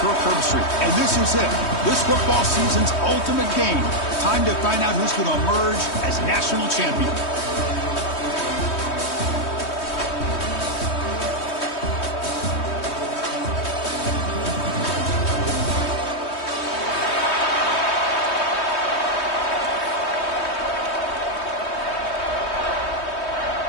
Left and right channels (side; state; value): right; late; 3.2 ms